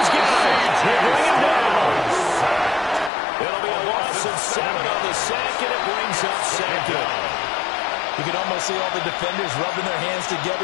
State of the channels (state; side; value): drops out; right; at 3.1 s